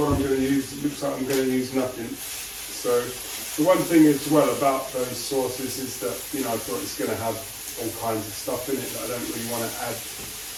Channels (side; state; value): both; identical; correlation 1.00